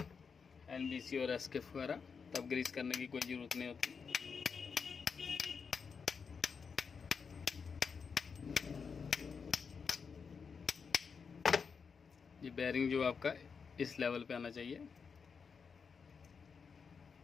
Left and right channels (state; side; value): quieter; right; 5.8 dB